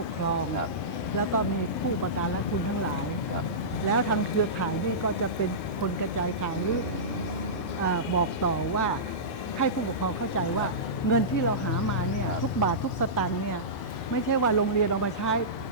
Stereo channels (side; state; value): both; normal; correlation -0.18